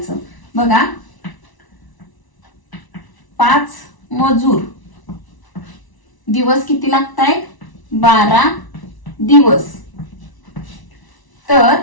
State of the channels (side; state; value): right; late; 1.0 ms